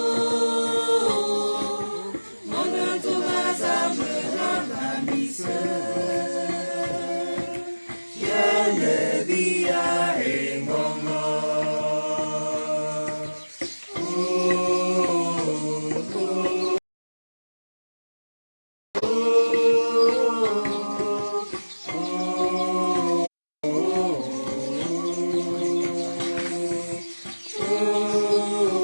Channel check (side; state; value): both; inverted; correlation -1.00